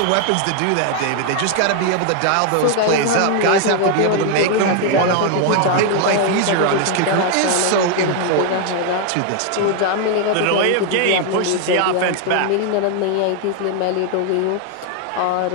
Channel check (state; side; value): different; both; correlation 0.00